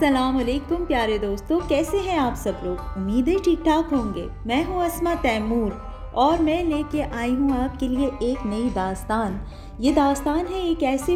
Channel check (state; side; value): identical; both; correlation 1.00